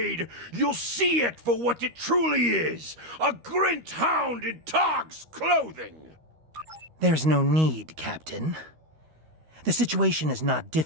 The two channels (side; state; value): left; late; 13 ms